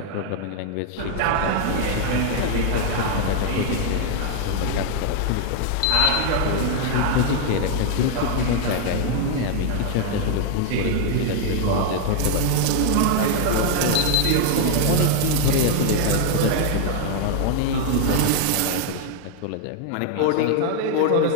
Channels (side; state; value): both; different; correlation 0.00